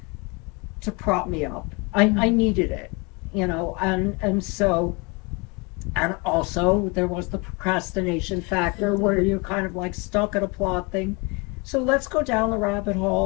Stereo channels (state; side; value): quieter; right; 29.2 dB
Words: to prop me up. I needed it, and so, and also there was the procrastination factor where you're kind of like stuck at a plot thing. So let's go down the rabbit